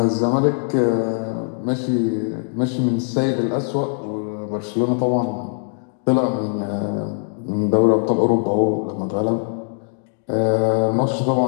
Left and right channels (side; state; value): right; silent; digital silence